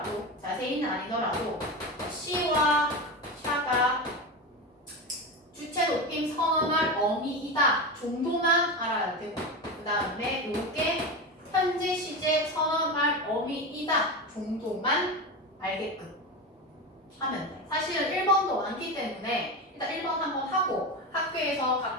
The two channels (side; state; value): both; normal; correlation 0.21